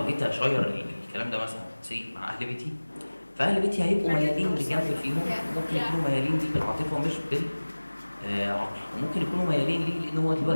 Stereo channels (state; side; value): inverted; both; correlation -1.00